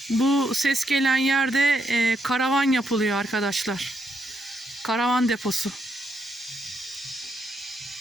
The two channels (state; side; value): normal; both; correlation 0.78